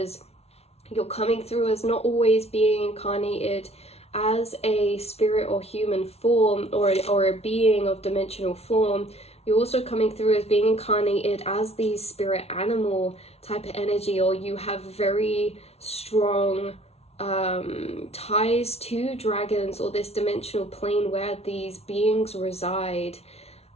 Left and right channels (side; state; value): right; late; 0.31 ms